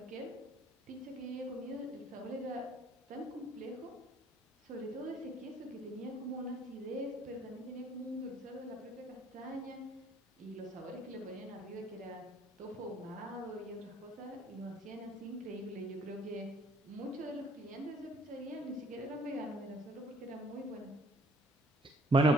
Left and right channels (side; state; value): both; normal; correlation 0.59